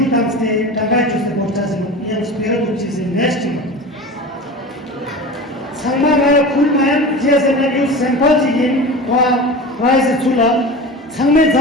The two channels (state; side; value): normal; both; correlation 0.32